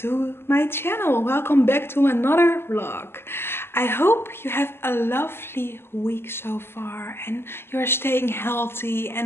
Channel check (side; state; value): right; late; 0.11 ms